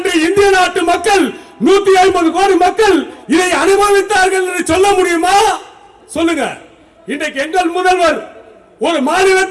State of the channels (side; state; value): both; identical; correlation 1.00